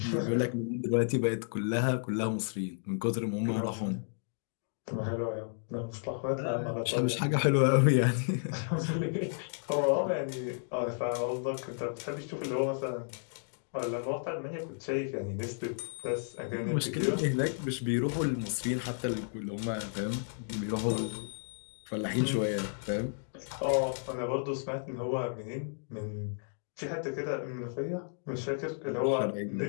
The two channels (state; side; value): silent; right; digital silence